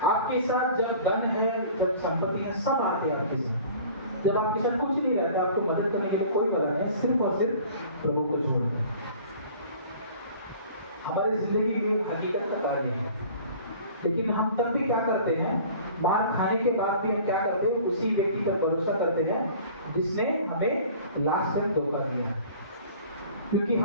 आपके साथ जब धन है, जब संपत्ति है, सब आते हैं आपके साथ। जब आपके साथ कुछ नहीं रहता, आपको मदद करने के लिए कोई बना नहीं, सिर्फ और सिर्फ प्रभु को छोड़। हमारी जिंदगी में हकीकत का कार्य है, लेकिन हम तब भी क्या करते हैं? मार खाने के बाद भी हम क्या करते हैं? उसी व्यक्ति पर भरोसा करते हैं जिसने हमें लास्ट में धोखा दिया। क्योंकि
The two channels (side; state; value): both; inverted; correlation -0.47